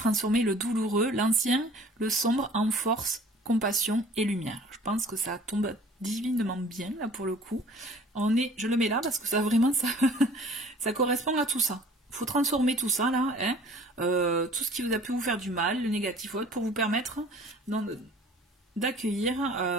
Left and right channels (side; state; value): both; normal; correlation 0.50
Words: le douloureux, l'ancien, le sombre en force, compassion et lumière. Je pense que ça tombe divinement bien là pour le coup. Je le mets là parce que ça vraiment ça correspond à tout ça. Il faut transformer tout ça là, hein, tout ce qui vous a pu vous faire du mal, le négatif autre, pour vous permettre d'accueillir